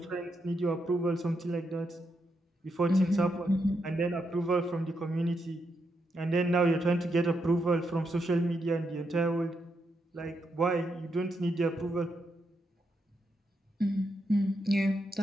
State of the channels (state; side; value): normal; both; correlation 0.82